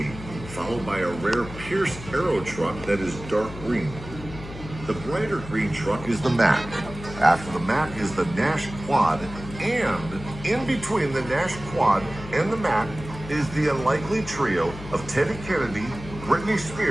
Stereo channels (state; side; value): noise; left; hum, 13 dB below the sound